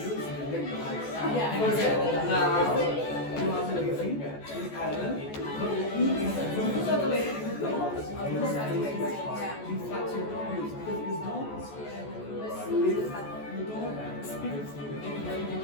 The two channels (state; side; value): late; right; 14 ms